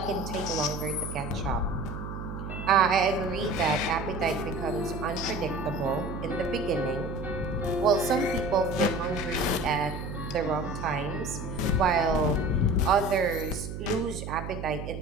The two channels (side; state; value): right; noise; hum, 7 dB below the sound